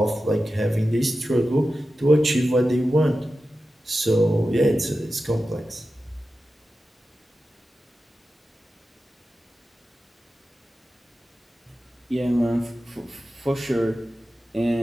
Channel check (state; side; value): normal; both; correlation 0.92